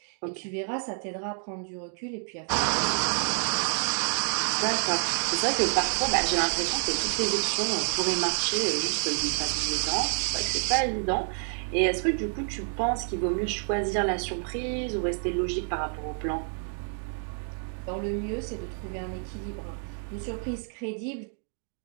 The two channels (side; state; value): left; silent; 59 dB below the other